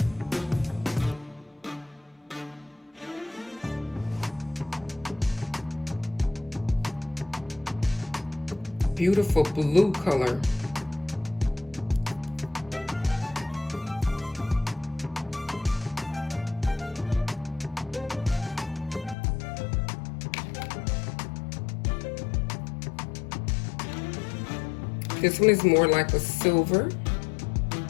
Beautiful blue color. This one is more like a silver.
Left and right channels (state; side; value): drops out; right; at 19.2 s